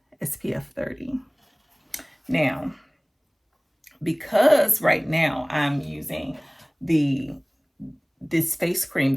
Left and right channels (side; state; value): both; identical; correlation 1.00